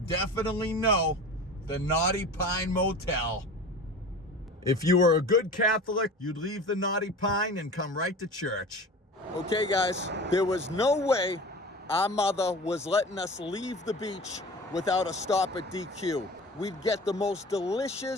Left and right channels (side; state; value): both; normal; correlation 0.36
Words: know the Naughty Pine Motel. If you were a good Catholic, you'd leave the Naughty Pine and come right to church. Okay, guys, there was no way our mother was letting us leave the beach without a stop at DQ. We'd get the most